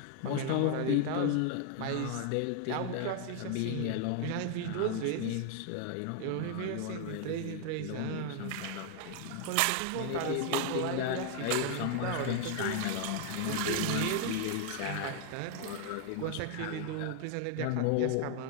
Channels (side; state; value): both; different; correlation 0.00